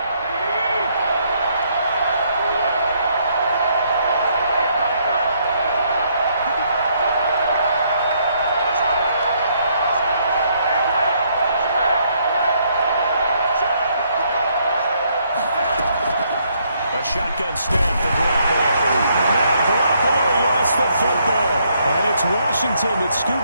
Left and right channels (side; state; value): both; inverted; correlation -0.71